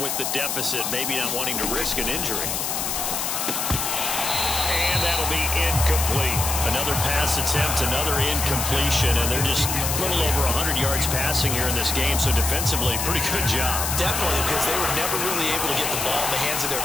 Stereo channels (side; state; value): left; noise; hiss, 1 dB below the sound